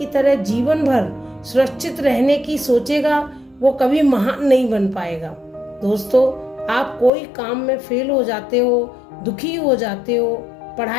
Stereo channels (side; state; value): right; drops out; at 7.1 s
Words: तरह जीवन भर सुरक्षित रहने की सोचेगा वो कभी महान नहीं बन पाएगा। दोस्तों, आप कोई काम में फेल हो जाते हो, दुखी हो जाते हो,